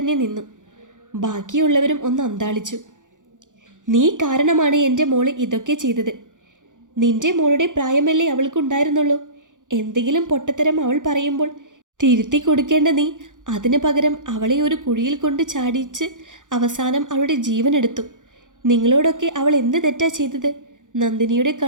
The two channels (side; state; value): left; late; 0.87 ms